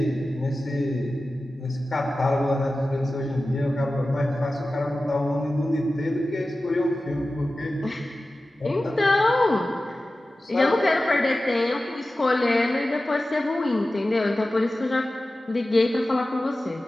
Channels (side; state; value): both; normal; correlation 0.95